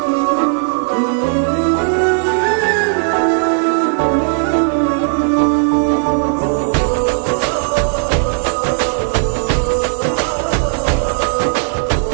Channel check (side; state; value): left; silent; 62 dB below the other